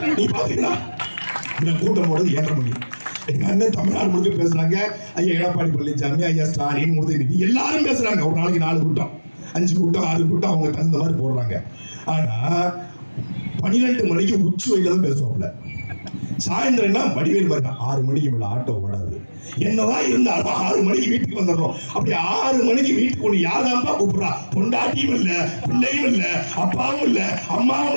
நீ பாத்தீங்களா? இந்த கூட்டம் ஓடுது 7:30 மணி. எங்க அண்ணன் தமிழ்நாடு முழுக்க பேசுறாங்க. ஐயா எடப்பாடி பழனிசாமி, ஐயா ஸ்டாலின், உதயநிதி எல்லாரும் பேசுறாங்க. ஒரு நாளைக்கு 4 கூட்டம், 5 கூட்டம், 6 கூட்டம் அவங்க தகுந்த மாதிரி போடுறாங்க. ஆனா 12 மணிக்கு உச்சி வெயில தான் பேசுவாப்ல. சாயந்தரம்னா வடிவேல் மாதிரி 6 மணிக்கு மேல ஆட்டோ ஓடாது. என்னதான் இருந்தாலும் 6 மணிக்கு வீட்டுக்கு வந்துடணும். அப்படி 6 மணிக்கு வீட்டுக்கு ஒண்ணு யாராம்பா கூப்பிடுறா? பொண்டாட்டியும் இல்ல, பிள்ளையும் இல்ல, அப்பாவும் இல்ல, அம்மாவும்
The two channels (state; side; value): inverted; both; correlation -1.00